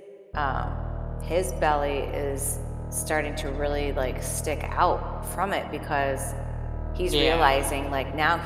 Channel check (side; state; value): both; identical; correlation 1.00